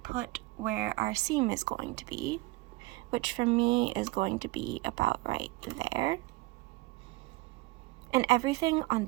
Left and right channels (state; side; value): quieter; left; 20.5 dB